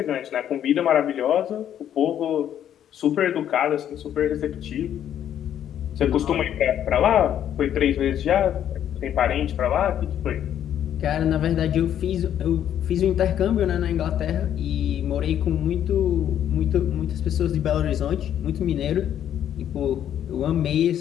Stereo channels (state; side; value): quieter; right; 10.3 dB